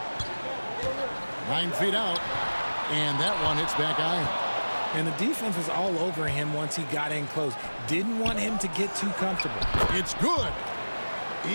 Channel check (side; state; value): both; inverted; correlation -1.00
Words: Nine feet out, and that one hits back iron. And the defense was all over him once he got in close. Didn't want him to get too comfortable. It's good.